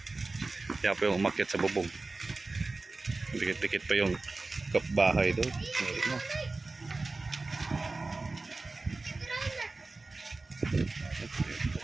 Yan po yung umakyat sa bubong. Dikit-dikit pa yung kapbahay doon. No?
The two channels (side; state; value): left; quieter; 3.5 dB